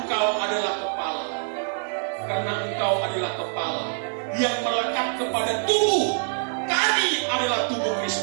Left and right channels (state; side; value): silent; left; digital silence